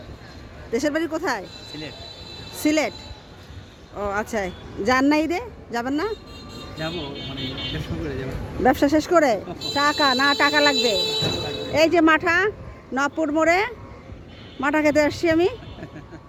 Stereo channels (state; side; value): identical; both; correlation 1.00